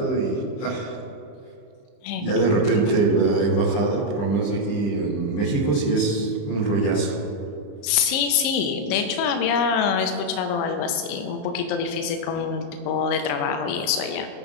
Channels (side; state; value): right; late; 35 ms